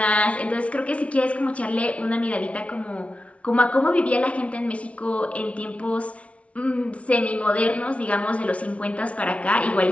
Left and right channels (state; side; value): late; right; 0.063 ms